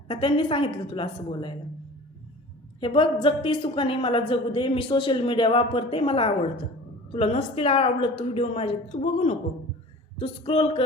का त्यांनी सांगितलं तुला असं बोलायला? हे बघ, जगती सुखाने मला जगू दे. मी सोशल मीडिया वापरते, मला आवडतं. तुला नसतील आवडत तू व्हिडिओ माझे, तू बघू नको. तू स्क्रोल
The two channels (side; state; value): both; normal; correlation 0.41